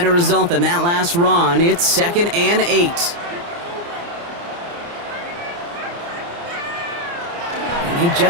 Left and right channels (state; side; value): late; left; 29 ms